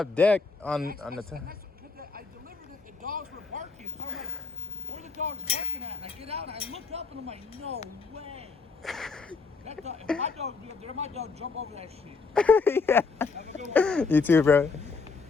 deck on the top. And that's what, I delivered it. The dogs were barking, so I'm like, where the dogs barking at? And I get out and I look up and I'm like, no way. That dog, if my dog be up there, my dog jump over that shit. Yeah. Have a good one. You too, bro.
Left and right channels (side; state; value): right; quieter; 4.5 dB